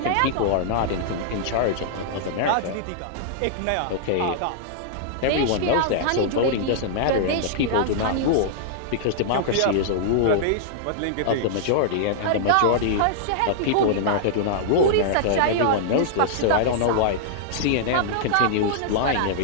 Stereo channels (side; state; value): both; different; correlation -0.02